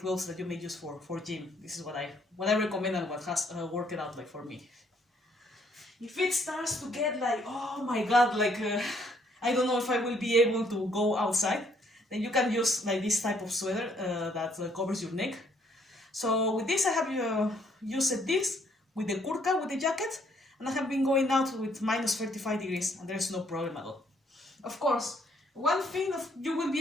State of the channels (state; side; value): normal; both; correlation 0.67